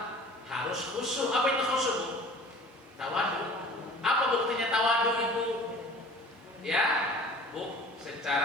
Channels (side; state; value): both; normal; correlation 0.46